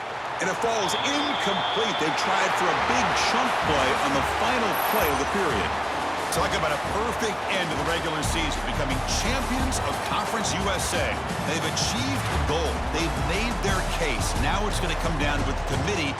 And it falls incomplete. They tried for a big chunk play on the final play of the period. Talk about a perfect end to the regular season, becoming champions of Conference USA. They've achieved a goal. They've made their case. Now it's going to come down to what the committee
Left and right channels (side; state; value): both; identical; correlation 1.00